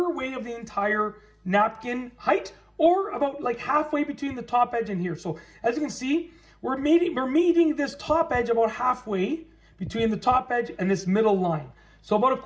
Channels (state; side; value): identical; both; correlation 1.00